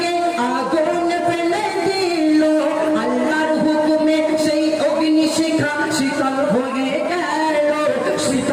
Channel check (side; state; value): both; identical; correlation 1.00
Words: আগুনে ফেলে দিল, আল্লাহর হুকুমে সেই অগ্নি শিখা শীতল হয়ে গেল,